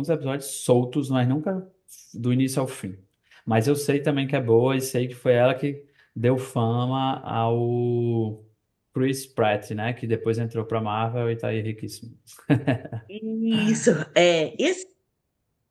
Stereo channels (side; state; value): both; identical; correlation 1.00